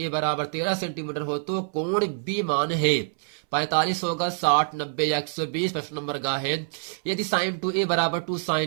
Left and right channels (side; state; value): left; silent; 61 dB below the other